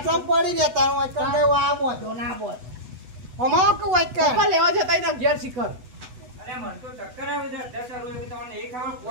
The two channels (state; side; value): late; left; 8.0 ms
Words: પડી ને તારું આ કંડે આ બોધો ના બોધ અમારો કે વાક્ય ઉપર લેવા જતા એના ઘેર શિખર અરે મને તો ચક્કર આવે છે. 10 રૂપિયા તમને એ